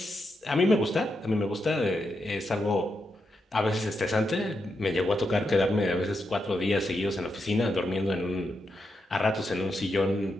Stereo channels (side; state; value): both; normal; correlation 0.84